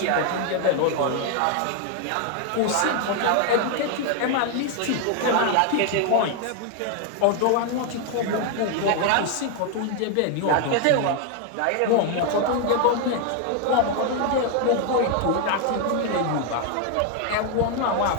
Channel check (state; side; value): different; both; correlation 0.00